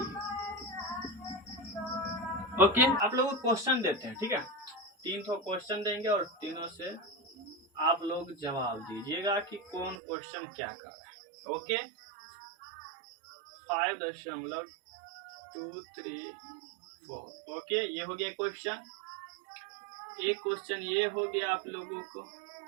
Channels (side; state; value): left; drops out; at 10.0 s